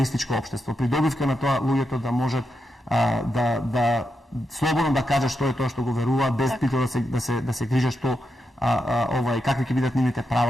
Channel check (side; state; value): both; normal; correlation 0.85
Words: општество, придобивка на тоа луѓето да можат да слободно да кажат што е тоа што го веруваат без притоа да се грижат што какви ќе бидат нивните